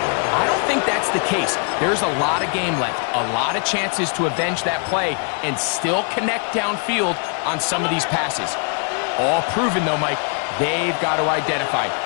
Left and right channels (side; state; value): right; quieter; 39.7 dB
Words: I don't think that's the case. There's a lot of game left, a lot of chances to avenge that play and still connect downfield on some of these passes. All proven, though, Mike. They've got to identify